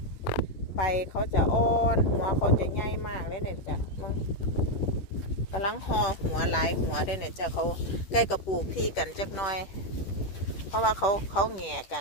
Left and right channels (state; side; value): late; right; 10 ms